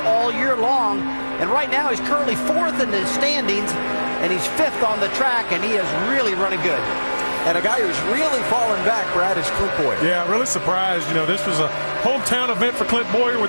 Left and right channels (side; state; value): both; inverted; correlation -1.00